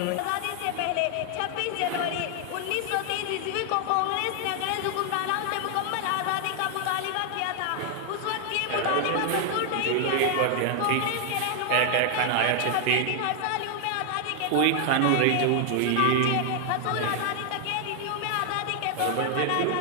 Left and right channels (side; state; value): both; different; correlation 0.00